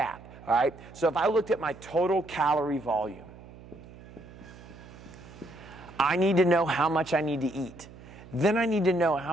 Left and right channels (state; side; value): noise; right; hum, 19 dB below the sound